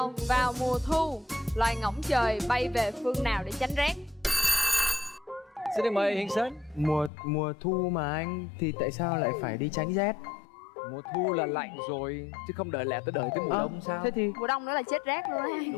Vào mùa thu, loài ngỗng trời bay về phương nào để tránh rét? Xin được mời Hiền Sến. Mùa thu mà anh, thì tại sao lại phải đi tránh rét? Mùa thu là lạnh rồi, chứ không đợi lẽ tới đợi tới mùa đông sao? Thế thì Mùa đông nữa là chết rét luôn á.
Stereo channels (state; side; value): drops out; right; at 7.1 s